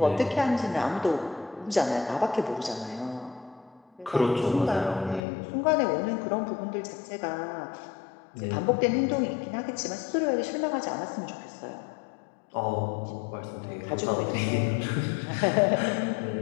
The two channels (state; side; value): drops out; right; at 5.2 s